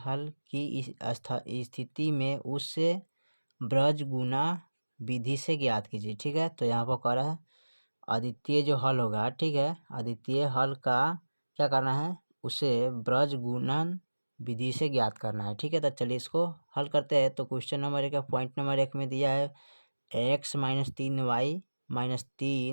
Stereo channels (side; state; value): both; inverted; correlation -1.00